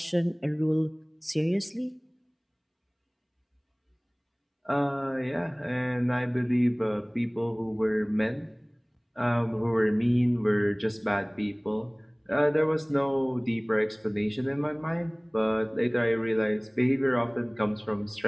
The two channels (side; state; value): both; identical; correlation 1.00